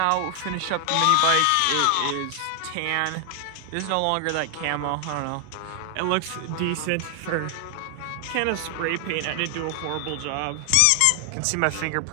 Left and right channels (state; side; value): different; both; correlation 0.00